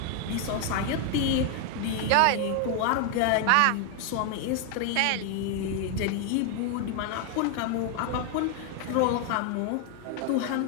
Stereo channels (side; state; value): both; different; correlation 0.00